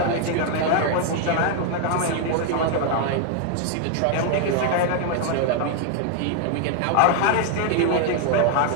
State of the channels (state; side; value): different; both; correlation 0.00